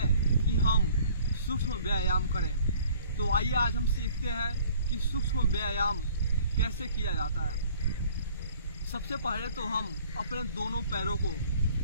कि हम सूक्ष्म व्यायाम करें। तो आइए आज हम सीखते हैं कि सूक्ष्म व्यायाम कैसे किया जाता है। सबसे पहले तो हम अपने दोनों पैरों को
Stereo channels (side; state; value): both; inverted; correlation -0.54